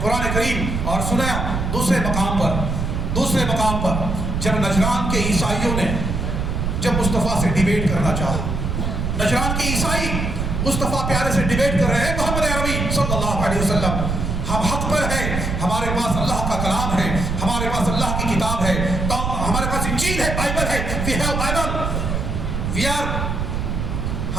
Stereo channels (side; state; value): right; noise; rumble, 2 dB below the sound